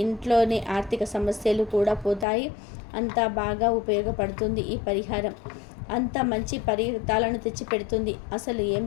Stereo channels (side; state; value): right; drops out; at 2.2 s